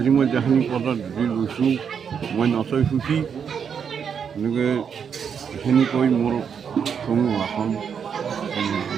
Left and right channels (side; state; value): left; quieter; 7.1 dB